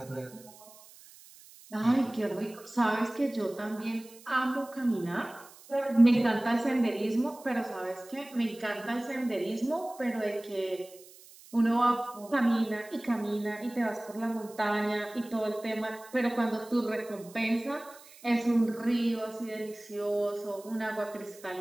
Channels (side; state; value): right; noise; hiss, 22 dB below the sound